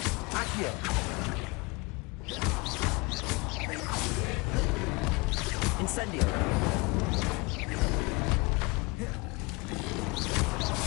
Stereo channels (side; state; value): right; quieter; 26.7 dB